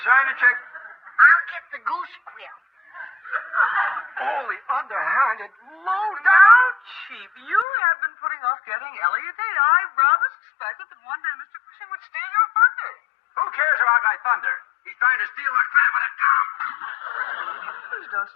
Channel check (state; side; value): drops out; right; at 7.7 s